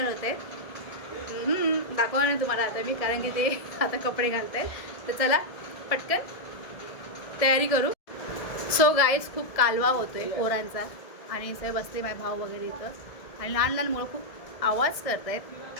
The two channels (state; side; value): late; right; 1.7 ms